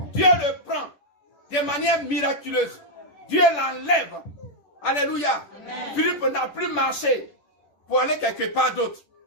Dieu le prend de manière miraculeuse. Dieu l'enlève. Alléluia. Amen. Philippe n'a plus marché pour aller quelque part d'autre.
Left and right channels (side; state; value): right; late; 10 ms